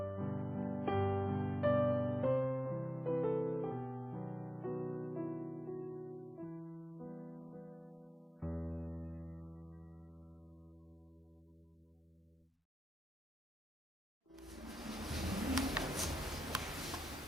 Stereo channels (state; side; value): normal; both; correlation 0.91